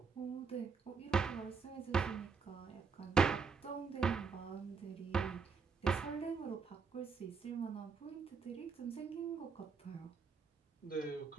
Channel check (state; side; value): quieter; left; 5.4 dB